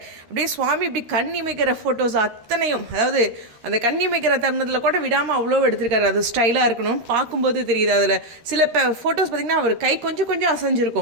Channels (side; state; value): left; late; 13 ms